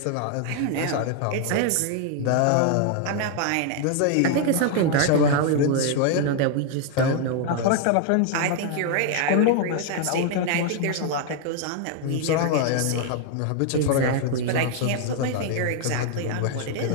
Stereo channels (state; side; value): different; both; correlation 0.00